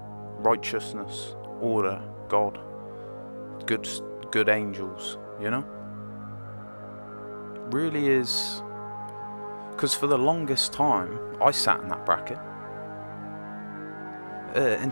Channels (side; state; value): both; inverted; correlation -1.00